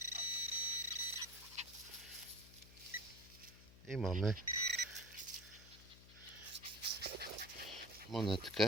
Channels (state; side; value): noise; left; hum, 18 dB below the sound